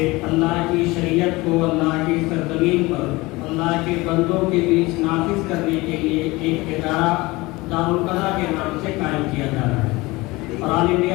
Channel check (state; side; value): quieter; right; 21.9 dB